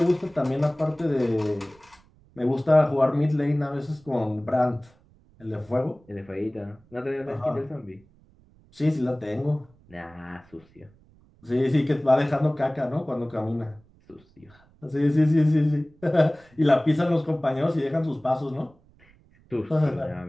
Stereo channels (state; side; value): noise; right; rumble, 29 dB below the sound